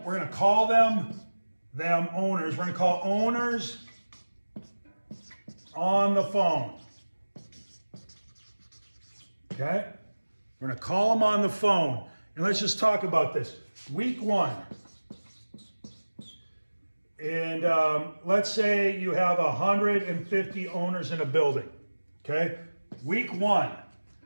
we're going to call them owners. We're going to call owners on the phone. Okay? We're going to call them on the phone. And let's just talk about this. Week one. And let's say you have 150 owners in a building. Okay? Week one.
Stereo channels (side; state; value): both; inverted; correlation -1.00